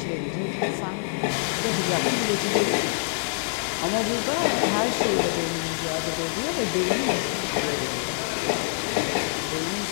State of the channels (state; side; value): silent; right; digital silence